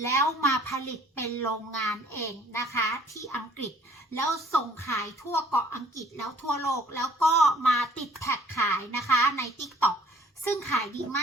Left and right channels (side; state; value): both; normal; correlation 0.57